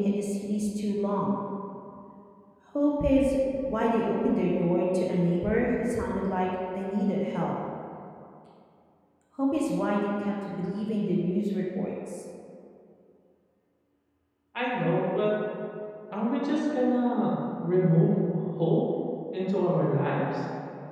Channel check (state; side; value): identical; both; correlation 1.00